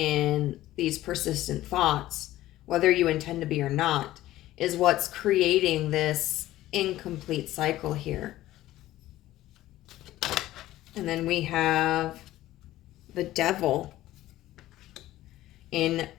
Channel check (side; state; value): right; quieter; 15.2 dB